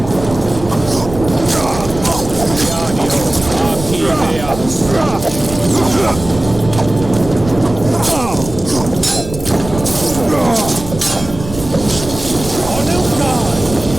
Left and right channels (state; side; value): noise; right; rumble, 11 dB below the sound